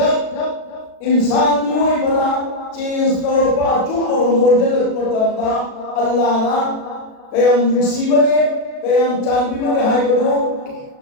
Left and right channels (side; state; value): right; late; 36 ms